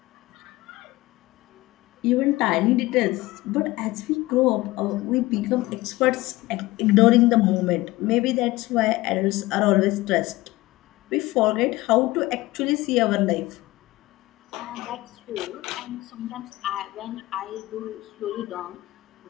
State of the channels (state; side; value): quieter; right; 19.2 dB